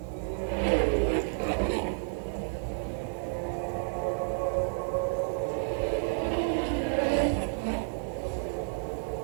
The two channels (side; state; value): left; silent; 57 dB below the other